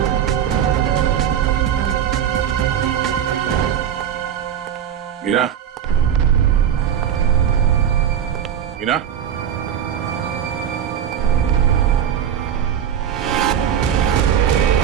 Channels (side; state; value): left; quieter; 9.2 dB